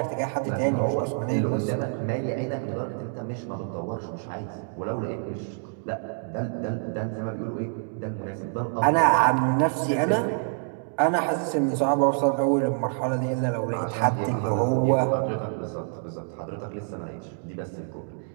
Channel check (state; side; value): silent; left; 60 dB below the other